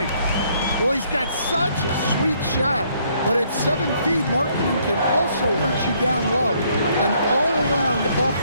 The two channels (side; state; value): both; inverted; correlation -0.68